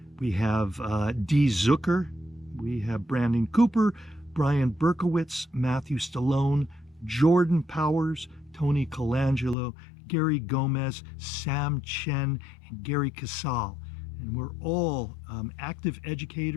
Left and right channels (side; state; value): right; drops out; at 9.6 s